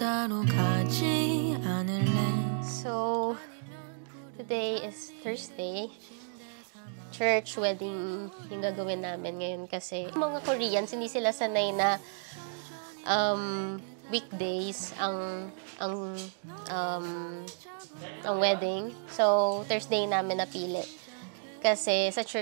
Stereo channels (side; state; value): left; silent; digital silence